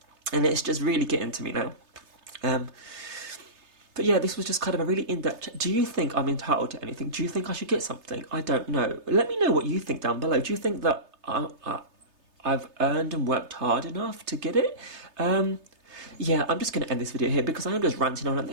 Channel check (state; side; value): late; left; 3.3 ms